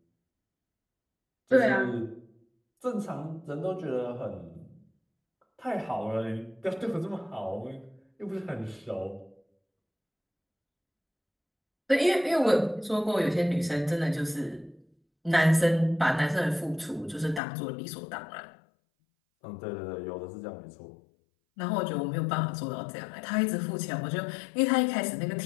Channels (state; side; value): drops out; right; at 17.4 s